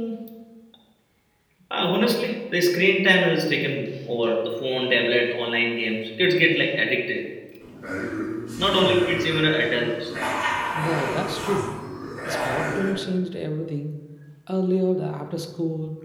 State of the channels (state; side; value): identical; both; correlation 1.00